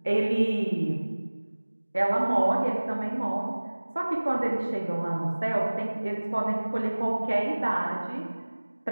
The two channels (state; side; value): inverted; both; correlation -1.00